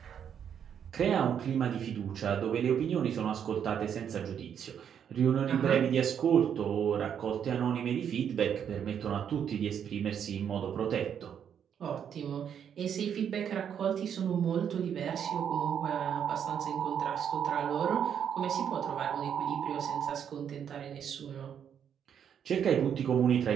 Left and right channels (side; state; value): left; quieter; 8.4 dB